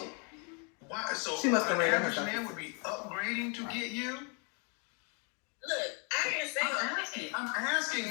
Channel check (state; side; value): quieter; right; 36.0 dB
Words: why? So She must have an rated average herself. man would be upgrading to get you. Look, I didn't say I'm asking,